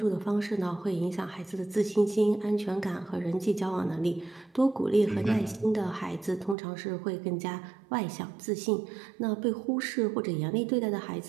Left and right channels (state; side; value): drops out; left; at 6.6 s